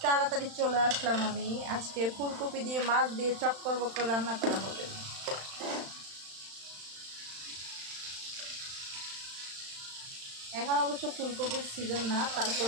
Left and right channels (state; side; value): late; left; 35 ms